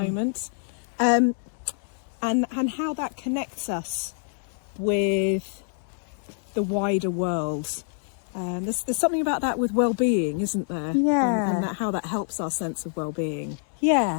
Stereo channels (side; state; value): right; silent; 61 dB below the other